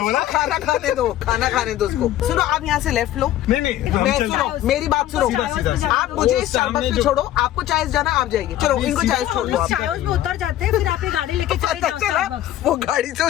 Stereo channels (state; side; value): quieter; right; 13.2 dB